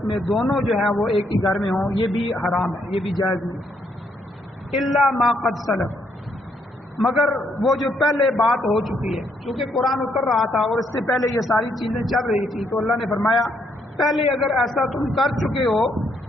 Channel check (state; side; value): normal; both; correlation 0.73